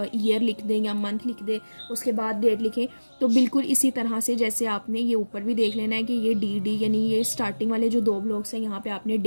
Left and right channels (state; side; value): inverted; both; correlation -1.00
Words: ईयर लिख दें या मंथ लिख दें उसके बाद डेट लिखें। तो बिल्कुल इसी तरह से जैसे आपने ये ऊपर भी देख लेना है कि ये डी यानी ये स्टार्टिंग वाले जो दो ब्लॉक्स हैं यहाँ पे आपने